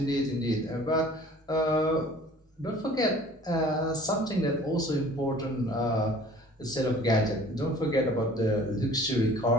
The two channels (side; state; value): both; normal; correlation 0.49